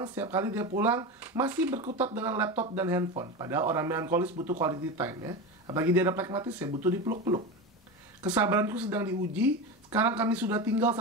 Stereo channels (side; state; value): both; normal; correlation 0.22